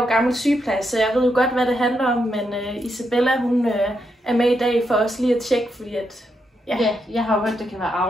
gammel sygeplejer, så jeg ved jo godt, hvad det handler om. Men Isabella, hun er med i dag for os lige at tjekke, fordi at... Ja, jeg har jo hørt, det kan være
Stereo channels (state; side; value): normal; both; correlation 0.81